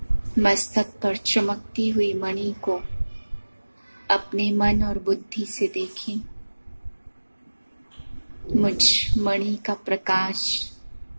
मस्तक पर चमकती हुई मणि को अपने मन और बुद्धि से देखें। मुझ मणि का प्रकाश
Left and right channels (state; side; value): inverted; both; correlation -1.00